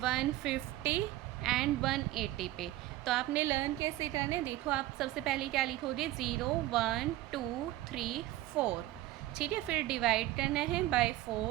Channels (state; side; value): quieter; left; 15.8 dB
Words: एंड 180 पे। तो आपने लर्न कैसे करना है? देखो, आप सबसे पहले क्या लिखोगे? 0, 1, 2, 3, 4। ठीक है, फिर डिवाइड करना है बाय